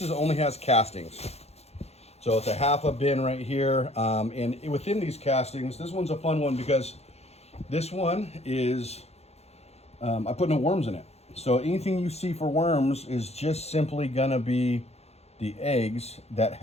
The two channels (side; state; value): right; late; 0.31 ms